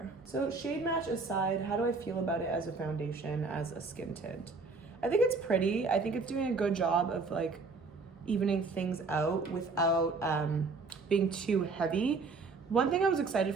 So shade match aside, how do I feel about it as a foundation, as a skin tint? I think it's pretty. I think it's doing a good job of like evening things out without being too heavy. One thing I was excited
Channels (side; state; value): left; quieter; 4.1 dB